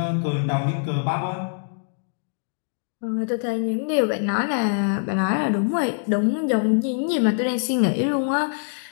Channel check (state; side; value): silent; right; digital silence